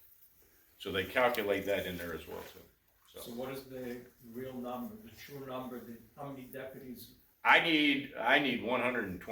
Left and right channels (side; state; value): both; identical; correlation 1.00